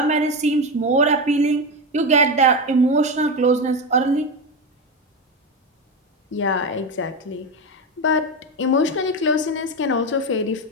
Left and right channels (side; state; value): both; normal; correlation 0.16